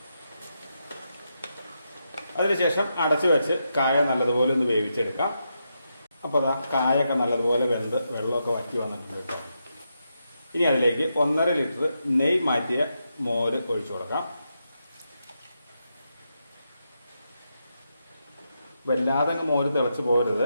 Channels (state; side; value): inverted; both; correlation -0.84